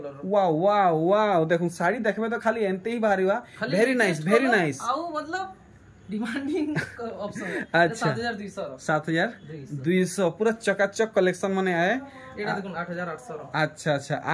वाओ देखुन साड़ी देखबे तो खाली एंते ही बाहरीवा वेरी नाइस आउ मतलब डिमांडिंग ऑप्शन है अच्छा 7200 पूरा चकाचक कलेक्शन माने आए एटा देखुन 8800 अच्छा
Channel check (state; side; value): identical; both; correlation 1.00